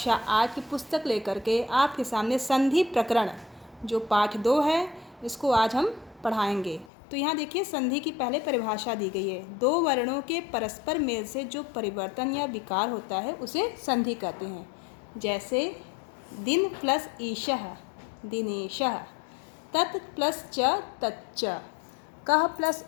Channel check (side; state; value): right; drops out; at 6.9 s